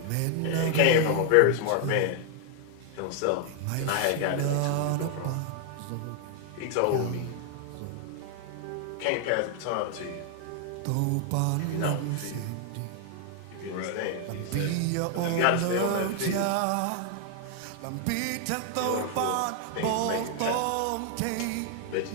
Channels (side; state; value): both; different; correlation 0.00